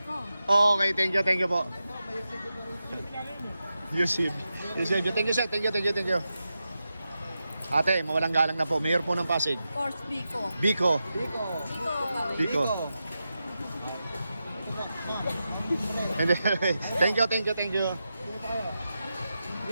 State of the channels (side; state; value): both; inverted; correlation -0.90